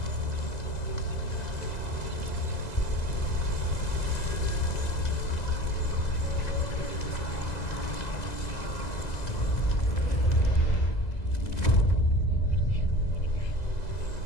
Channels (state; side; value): late; right; 2.0 ms